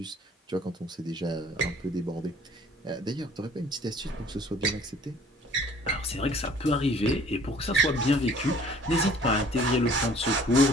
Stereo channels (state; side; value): normal; both; correlation 0.53